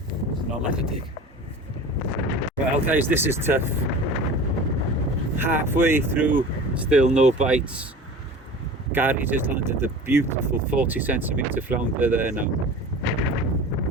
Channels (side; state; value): both; normal; correlation 0.37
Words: Not like a dig. Well guys, this is tough. Halfway through, still no bites. Gary just landed a beautiful 40cm flounder there now.